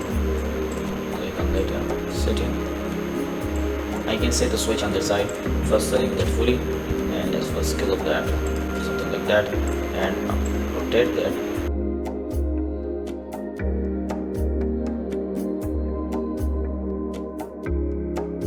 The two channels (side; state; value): both; identical; correlation 1.00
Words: click on that setting. I can set the switch on the side. First select that fully, and let's first scale up that, something like that, and rotate that.